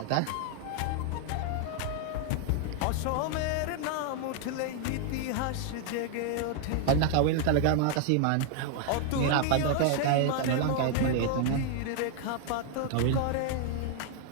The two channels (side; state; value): both; different; correlation 0.00